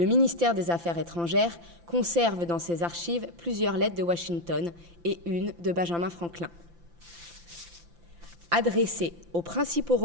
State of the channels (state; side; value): late; left; 5.8 ms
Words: ministère des Affaires étrangères conserve dans ses archives plusieurs lettres de Washington et une de Benjamin Franklin. Adressée aux principaux